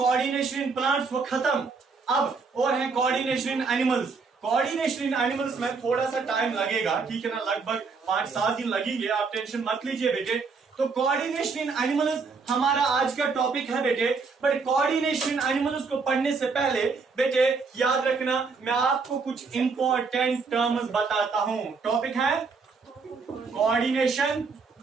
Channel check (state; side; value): quieter; left; 4.7 dB